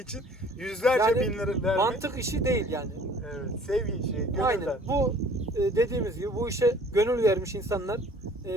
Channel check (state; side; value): normal; both; correlation 0.52